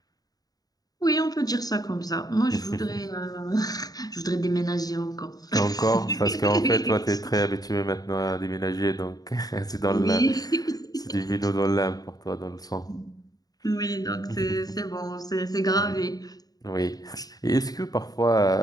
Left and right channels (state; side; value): late; right; 0.18 ms